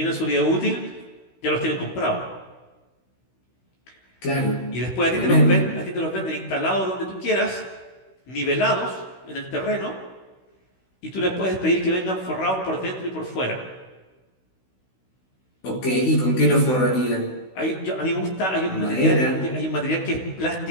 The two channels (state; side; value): late; right; 16 ms